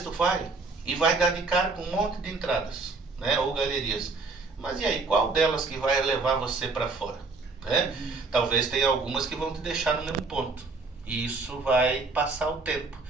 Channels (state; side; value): quieter; left; 3.9 dB